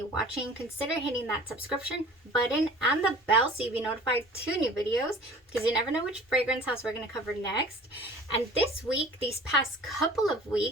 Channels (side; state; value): both; normal; correlation 0.45